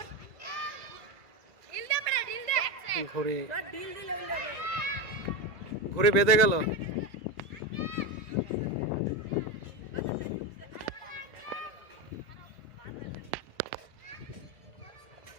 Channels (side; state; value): left; late; 2.0 ms